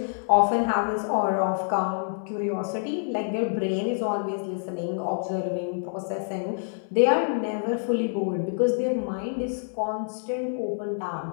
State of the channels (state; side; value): silent; right; 60 dB below the other